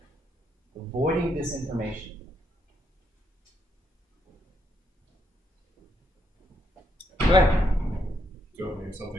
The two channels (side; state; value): both; normal; correlation 0.77